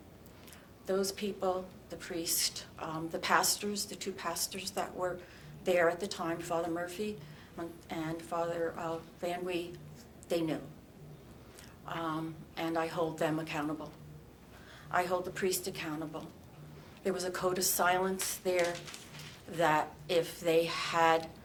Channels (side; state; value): both; identical; correlation 1.00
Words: Those people, the priest, the pastors, the 2 pastors that were there at the time, Father Murphy and Father Van Wee, they knew. And I hold them accountable. I hold the priest accountable. There was a code of silence there that if they had